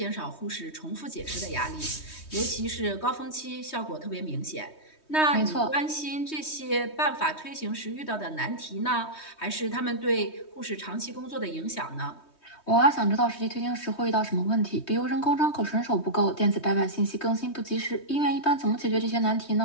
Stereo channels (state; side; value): late; right; 3.2 ms